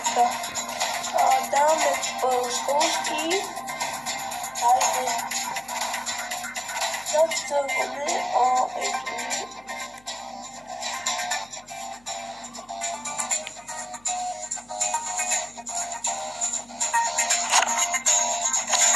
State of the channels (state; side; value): noise; left; hum, 30 dB below the sound